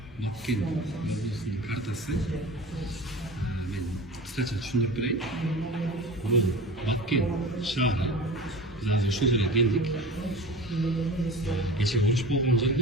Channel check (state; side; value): normal; both; correlation 0.35